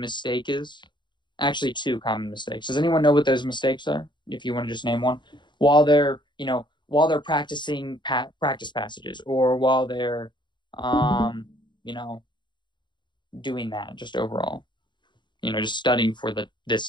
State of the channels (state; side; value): late; right; 0.22 ms